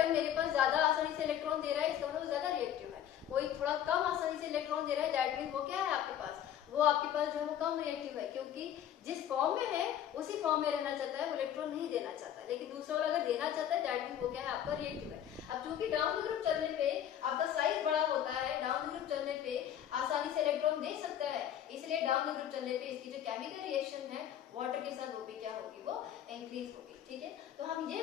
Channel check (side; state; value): right; quieter; 10.4 dB